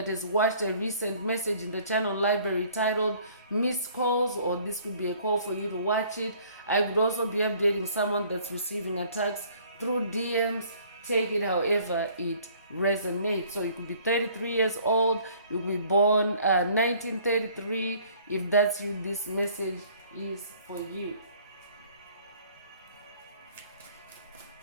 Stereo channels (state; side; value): inverted; both; correlation -0.56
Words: has watched a recent message in the channel library titled Missed Calls, or this could be a call for you to watch it. I would also be updating someone that's receiving attacks through DMs. Take it however it resonates. So you could be 33 years old, you could be born 1933. If that's you, this message is for you.